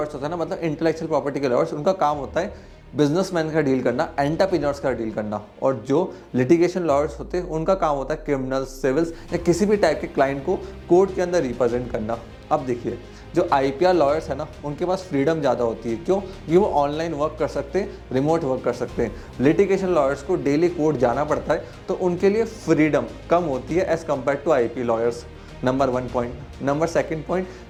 होता है ना, मतलब इंटेलेक्चुअल प्रॉपर्टी के लॉयर्स, उनका काम होता है बिजनेसमैन का डील करना, एंटरप्रेन्योर्स का डील करना। और जो लिटिगेशन लॉयर्स होते हैं उनका काम होता है क्रिमिनल्स, सिविल्स या किसी भी टाइप के क्लाइंट को कोर्ट के अंदर रिप्रेजेंट करना। अब देखिए, जो आईपीआर लॉयर्स है ना, उनके पास फ्रीडम ज़्यादा होती है। क्यों? क्योंकि वो ऑनलाइन वर्क कर सकते हैं, रिमोट वर्क कर सकते हैं। लिटिगेशन लॉयर्स को डेली कोर्ट जाना पड़ता है, तो उनके लिए फ्रीडम कम होती है as compare to IP lawyers. Number 1 point. Number 2 point,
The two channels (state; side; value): identical; both; correlation 1.00